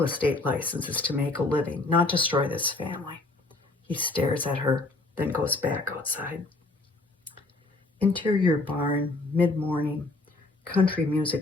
estate license is to make a living, not destroy this family." He stares at her, then goes back outside. Interior barn, mid-morning. Country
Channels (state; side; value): quieter; right; 3.1 dB